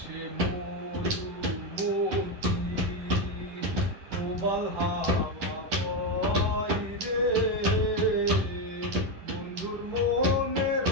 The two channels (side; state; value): left; late; 10 ms